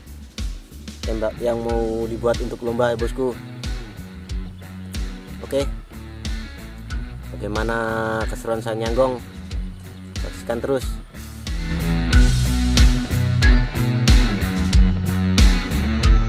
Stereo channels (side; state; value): both; identical; correlation 1.00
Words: tembak yang mau dibuat untuk lomba ya bosku. Oke, bagaimana keseruan saya nyanggong? Saksikan terus.